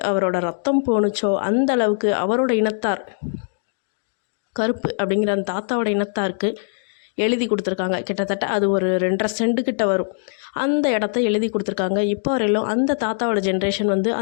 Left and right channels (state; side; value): silent; right; digital silence